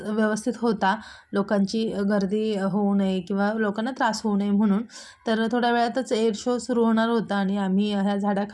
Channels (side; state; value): both; identical; correlation 1.00